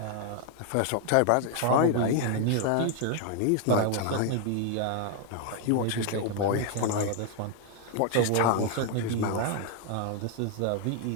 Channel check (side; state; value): both; different; correlation 0.00